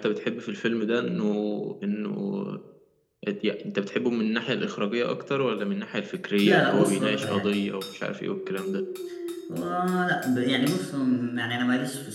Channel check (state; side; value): identical; both; correlation 1.00